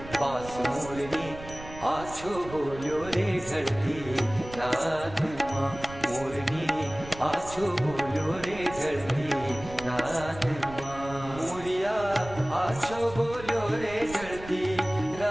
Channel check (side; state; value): right; noise; rumble, 14 dB below the sound